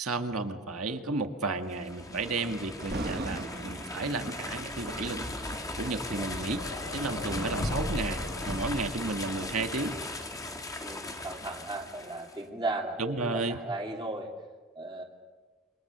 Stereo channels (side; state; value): both; normal; correlation 0.38